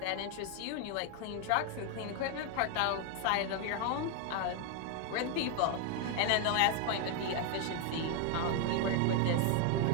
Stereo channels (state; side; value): different; both; correlation 0.01